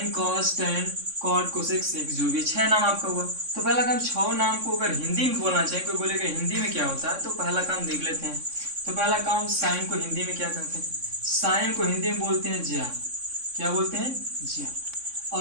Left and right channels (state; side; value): late; left; 3.6 ms